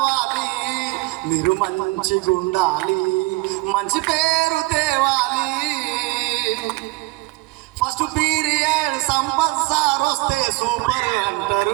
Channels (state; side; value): quieter; left; 22.0 dB